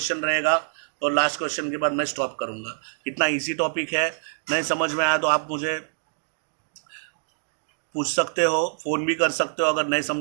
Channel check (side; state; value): left; silent; digital silence